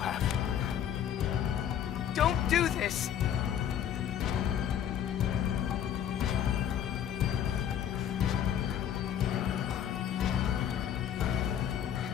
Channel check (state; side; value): quieter; right; 9.7 dB